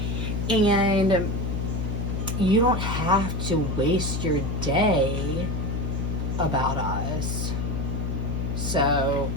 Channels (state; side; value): noise; left; hum, 1 dB below the sound